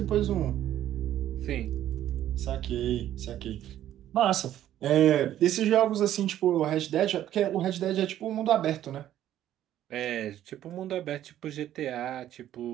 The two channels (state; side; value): quieter; left; 12.1 dB